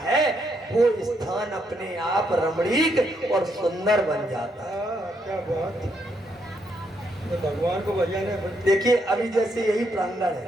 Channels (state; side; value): normal; both; correlation 0.76